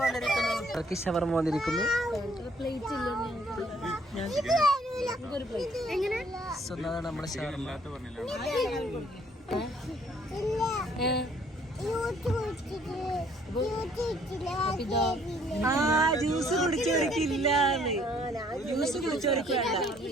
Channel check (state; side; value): normal; both; correlation 0.62